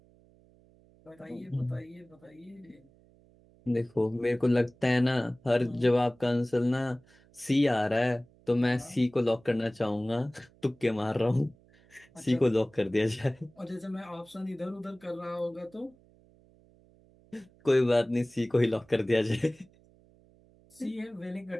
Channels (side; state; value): right; noise; hum, 29 dB below the sound